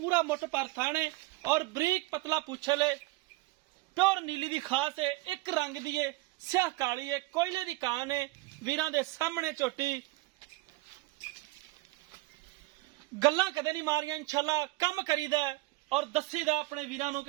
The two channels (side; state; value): left; quieter; 21.7 dB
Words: मुठ पर थाने और बरीक पतला पूछल है। प्योर नीली दी खास है, एक रंग दी है, स्याह काली है, कोयले दी कान है। वीरां दे सामने झोटी गल्लां कदे नहीं मारियां। इंशाअल्लाह कम करीदा और दसीदा अपने वीरां नूं